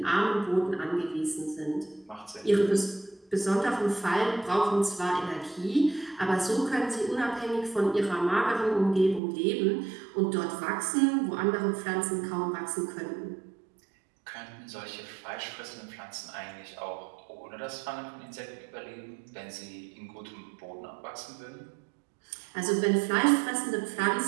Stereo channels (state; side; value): drops out; left; at 9.2 s